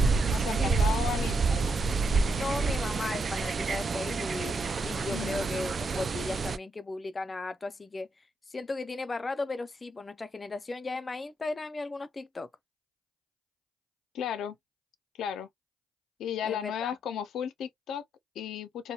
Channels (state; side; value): normal; both; correlation 0.79